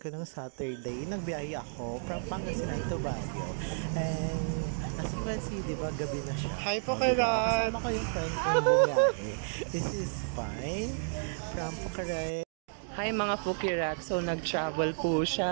ko nung Saturday, nagbiyahe ako from Pangasinan to Baguio. And as you can see, di ba, gabi na siya. Hi po kayo! Kasama ko yung friend kong bumiyahe. This is Pine from Pucaray. Hi mga Pukirat, so nag-travel po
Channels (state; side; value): silent; left; digital silence